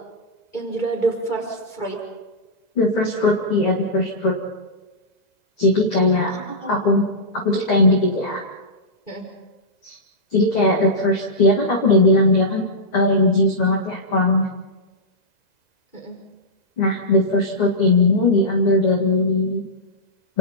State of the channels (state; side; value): late; right; 2.0 ms